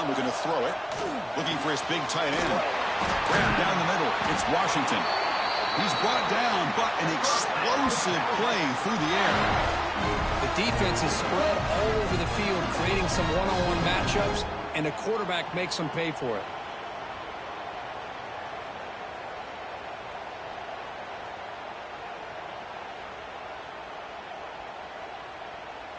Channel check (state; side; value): identical; both; correlation 1.00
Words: we're going to throw it. Looking for his big tight end. Grab down the middle. It's Washington. He's brought down, but an explosive play through the air. The defense is spread all over the field, creating some one-on-one matchups, and the quarterback makes them pay for it.